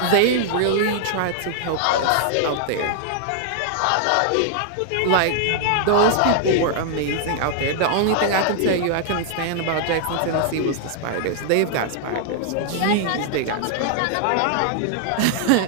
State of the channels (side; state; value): both; different; correlation 0.00